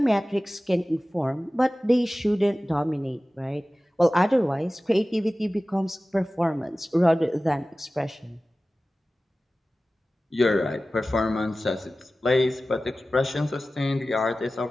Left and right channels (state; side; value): normal; both; correlation 0.96